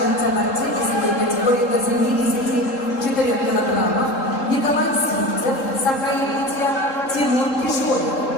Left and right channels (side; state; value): right; late; 3.7 ms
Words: борцы весовой категории до 74 килограммов Николай Сивцев, Саха-Якутия, Тимур Кишоев,